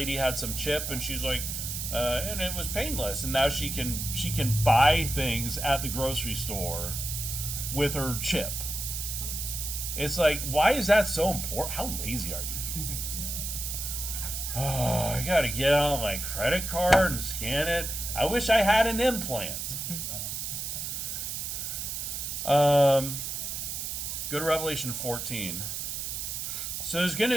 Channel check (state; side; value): noise; right; hiss, 4 dB below the sound